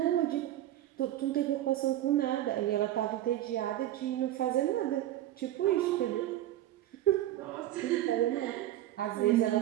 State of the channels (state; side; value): quieter; left; 13.6 dB